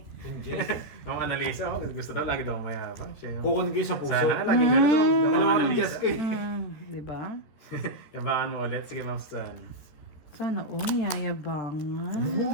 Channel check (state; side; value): late; right; 13 ms